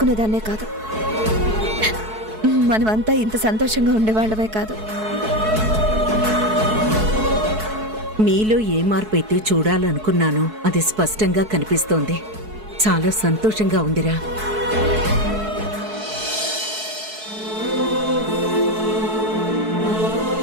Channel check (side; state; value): left; late; 4.6 ms